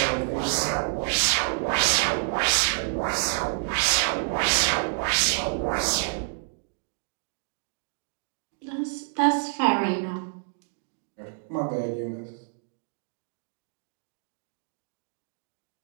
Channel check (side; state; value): left; silent; digital silence